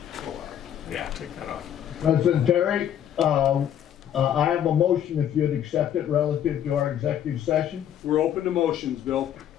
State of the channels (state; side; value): quieter; right; 10.0 dB